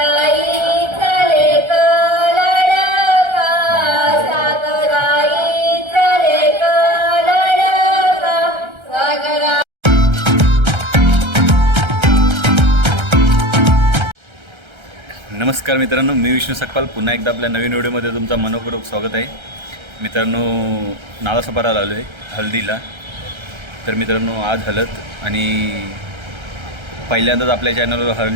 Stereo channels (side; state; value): left; late; 1.3 ms